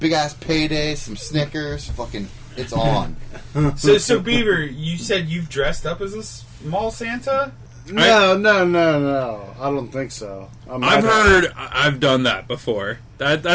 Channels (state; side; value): identical; both; correlation 1.00